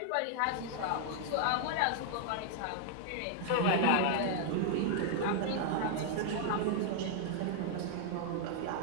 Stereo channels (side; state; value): both; different; correlation -0.01